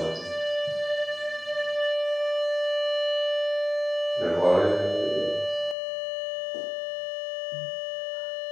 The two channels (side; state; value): right; drops out; at 5.8 s